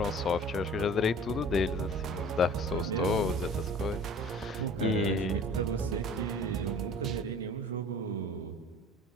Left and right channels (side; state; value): both; normal; correlation 0.45